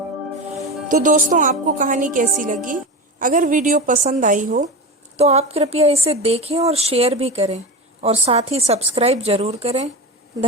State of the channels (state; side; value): normal; both; correlation 0.23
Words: तो दोस्तों, आपको कहानी कैसी लगी? अगर वीडियो पसंद आई हो तो आप कृपया इसे देखें और शेयर भी करें और साथ ही सब्सक्राइब जरूर करें।